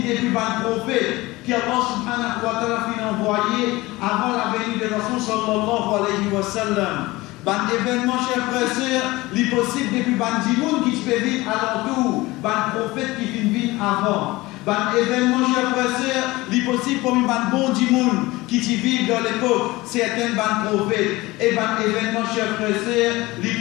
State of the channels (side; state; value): right; quieter; 20.4 dB